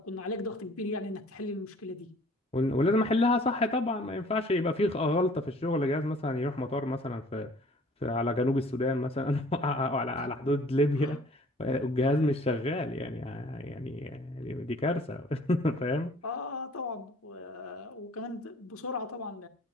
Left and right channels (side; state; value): both; normal; correlation 0.53